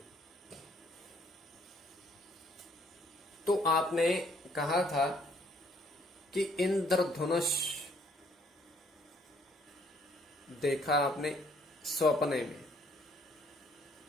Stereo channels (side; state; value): both; normal; correlation 0.64